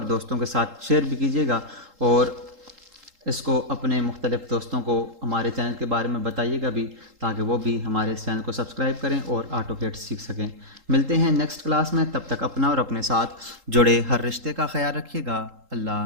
दोस्तों के साथ शेयर भी कीजिएगा। और इसको अपने मुख्तलिफ़ दोस्तों को हमारे चैनल के बारे में बताइएगा भी, ताकि वो भी हमारे इस चैनल को सब्सक्राइब करें और ऑटोकैड सीख सकें। मिलते हैं नेक्स्ट क्लास में, तब तक अपना और अपने साथ जुड़े हर रिश्ते का ख्याल रखिएगा।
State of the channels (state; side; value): late; left; 3.8 ms